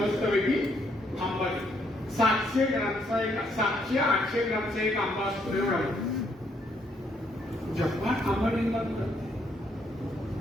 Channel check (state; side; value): normal; both; correlation 0.72